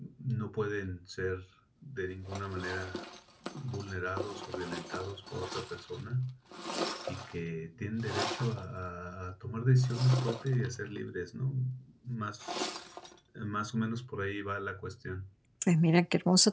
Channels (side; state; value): both; identical; correlation 1.00